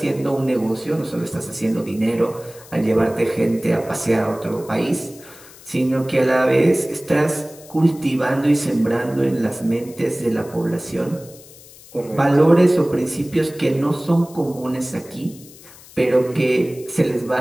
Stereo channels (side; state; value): left; noise; hiss, 21 dB below the sound